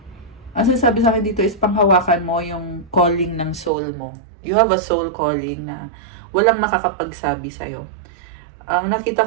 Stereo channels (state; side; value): drops out; left; at 3.7 s